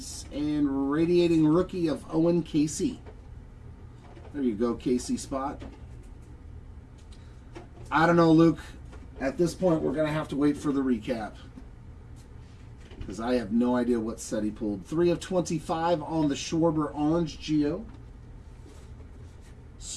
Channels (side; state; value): both; identical; correlation 1.00